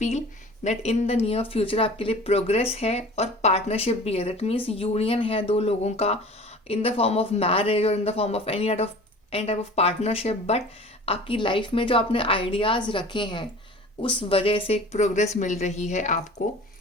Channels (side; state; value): both; normal; correlation 0.42